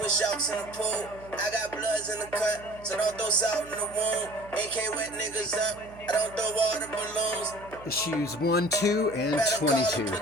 sharks in the pool. I got bloods in the cut, so don't throw salt in the wound. AK wet niggas up, I don't throw water balloons. Issues 1, 2, and 22.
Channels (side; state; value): right; noise; hum, 19 dB below the sound